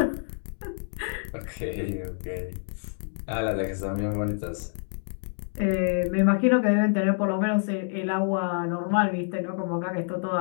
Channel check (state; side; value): silent; right; digital silence